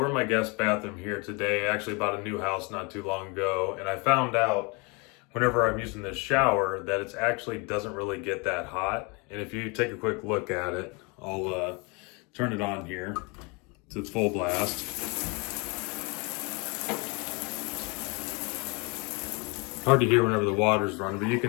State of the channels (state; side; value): quieter; right; 30.1 dB